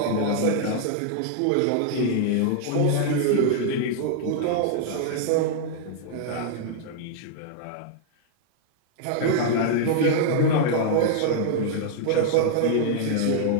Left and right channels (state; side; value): different; both; correlation -0.01